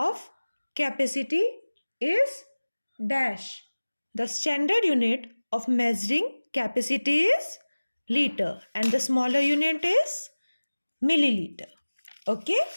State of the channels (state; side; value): inverted; both; correlation -1.00